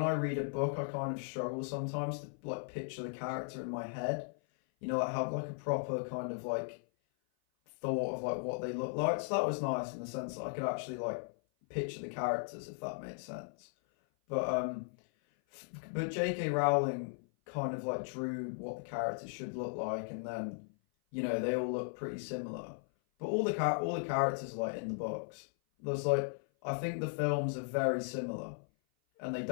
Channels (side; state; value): right; silent; 53 dB below the other